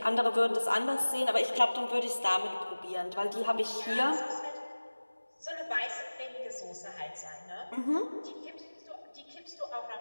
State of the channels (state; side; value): inverted; both; correlation -1.00